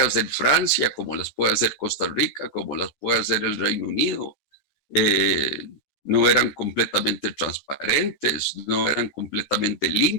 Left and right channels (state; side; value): late; right; 14 ms